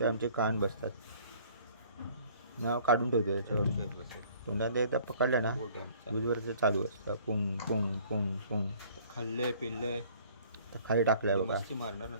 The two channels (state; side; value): inverted; both; correlation -0.55